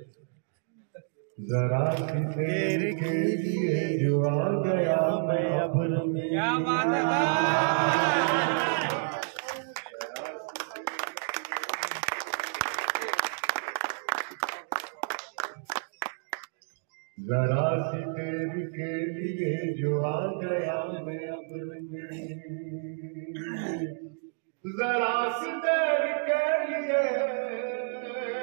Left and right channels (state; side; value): silent; left; digital silence